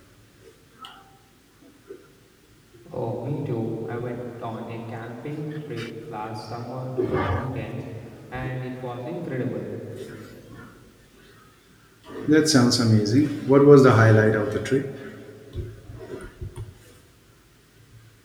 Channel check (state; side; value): identical; both; correlation 1.00